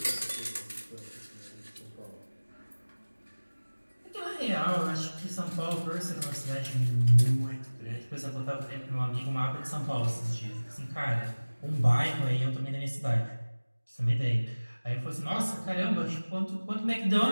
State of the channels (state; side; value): inverted; both; correlation -1.00